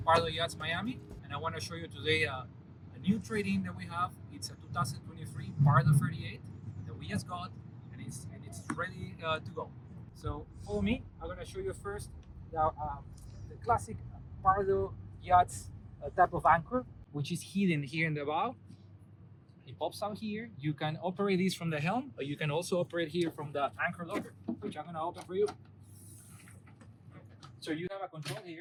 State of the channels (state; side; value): identical; both; correlation 1.00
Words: Pardo Yachts Miami, and I want to show you today a new trade-in that we have. It's a 2023 Pardo 38 that we just got, and it's ready to go. So follow me. I'm going to show you first the classic Pardo Yachts type of anchor, which is hidden here in the bow. It pops out here. You can operate this from the helm, or you can also operate here from the anchor locker, which I'm going to open for you. So you have a control